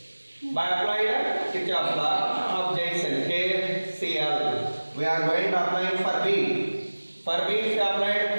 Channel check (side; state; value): both; inverted; correlation -1.00